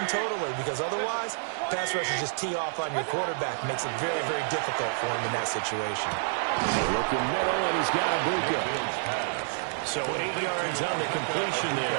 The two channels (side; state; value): left; silent; digital silence